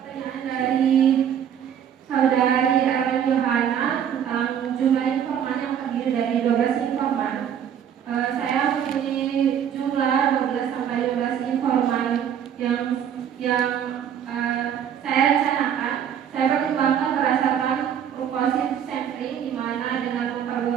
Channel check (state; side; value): quieter; left; 9.0 dB